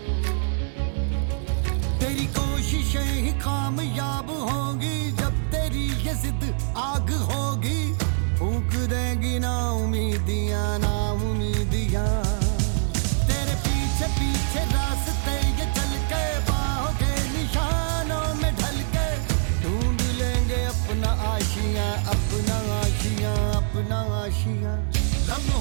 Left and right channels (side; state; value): left; silent; digital silence